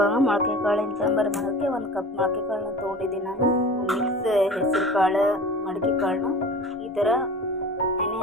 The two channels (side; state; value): both; normal; correlation 0.38